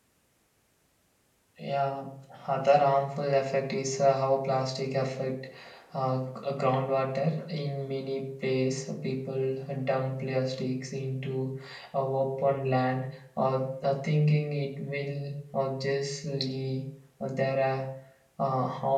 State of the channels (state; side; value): identical; both; correlation 1.00